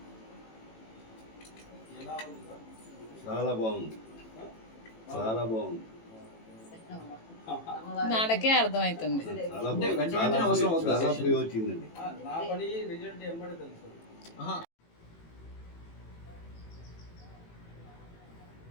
ఎలా ఉంది సార్? చాలా బాగుంది, చాలా బాగుంది. నాకే అర్థమవుతుంది. చాలా ఫ్రీ వచ్చిందండి. నా పని రిజల్ట్ ఏమని తెలుసు.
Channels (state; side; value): late; right; 18 ms